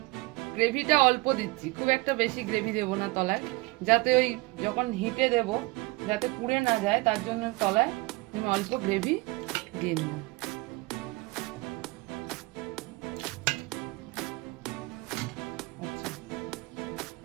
গ্রেভিটা অল্প দিচ্ছি, খুব একটা বেশি গ্রেভি দেবো না তলায়, যাতে ওই যখন হিটে দেব যাতে পুড়ে না যায়, তার জন্য তলায় আমি অল্প গ্রেভি দিয়ে নেব।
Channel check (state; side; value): quieter; left; 23.4 dB